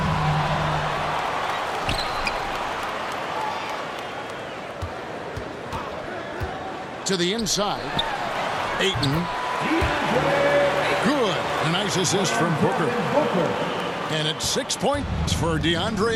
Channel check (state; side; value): identical; both; correlation 1.00